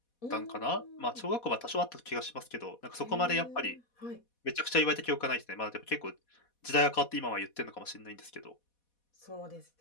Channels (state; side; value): late; right; 4.1 ms